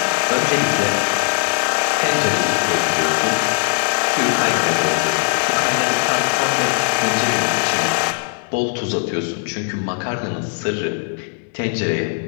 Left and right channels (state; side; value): silent; right; digital silence